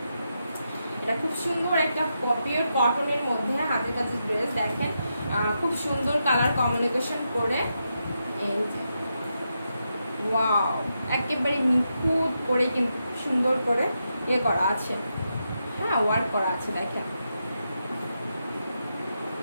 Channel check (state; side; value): inverted; both; correlation -0.85